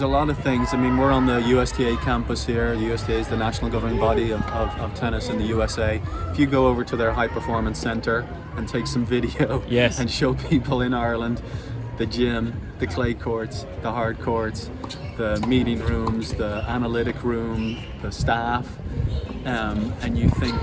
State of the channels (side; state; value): both; identical; correlation 1.00